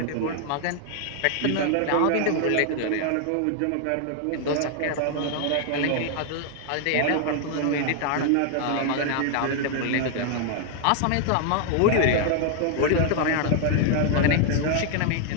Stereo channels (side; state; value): both; different; correlation 0.00